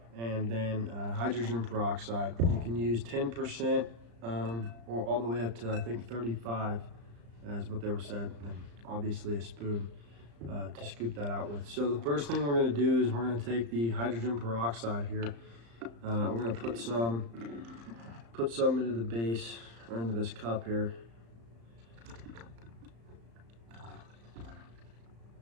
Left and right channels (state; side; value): late; left; 35 ms